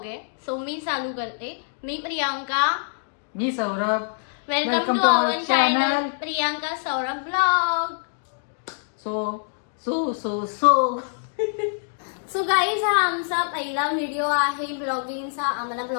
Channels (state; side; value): silent; right; digital silence